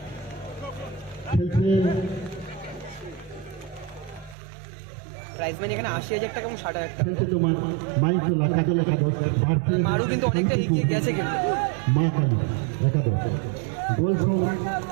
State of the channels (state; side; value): drops out; left; at 4.4 s